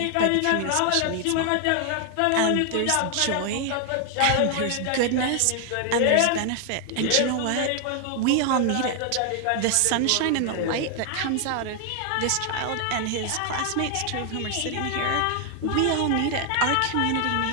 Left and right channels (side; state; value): both; different; correlation 0.00